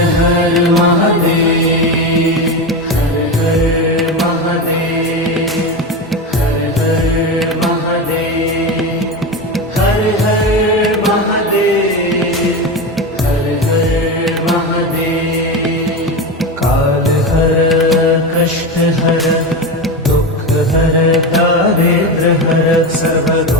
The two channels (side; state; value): both; normal; correlation 0.20